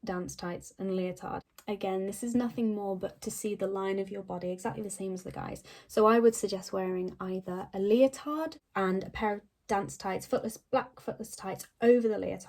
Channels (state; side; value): identical; both; correlation 1.00